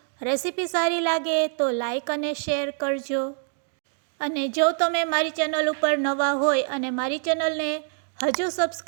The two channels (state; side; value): silent; left; 62 dB below the other